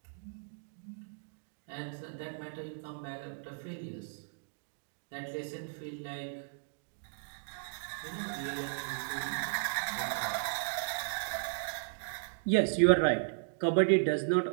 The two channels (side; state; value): left; silent; digital silence